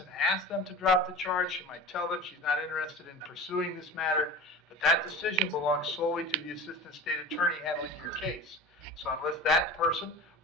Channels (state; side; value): normal; both; correlation 0.34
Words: ask them to drop the charge. She might tell them she's not interested in pursuing this matter, but that decision belongs solely to the assistant state attorney handling your case. So unless that person